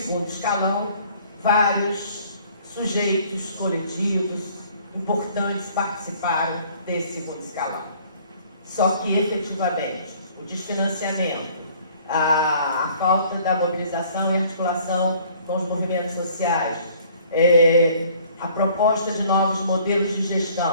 escalão, vários sujeitos coletivos importantes participaram desse segundo escalão. Só que, efetivamente, o desfinanciamento, a falta da mobilização e articulação com os movimentos sociais, a proposta de novos modelos de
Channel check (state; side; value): inverted; both; correlation -0.56